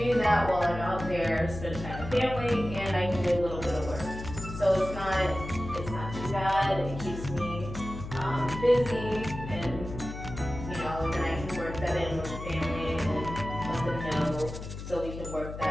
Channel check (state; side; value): noise; left; hum, 9 dB below the sound